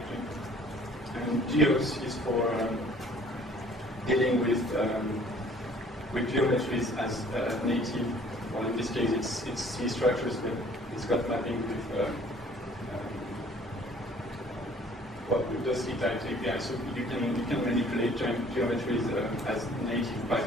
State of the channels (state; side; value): normal; both; correlation 0.55